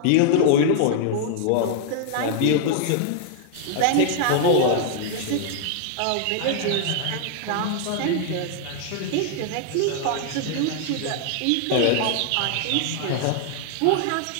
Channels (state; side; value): different; both; correlation 0.00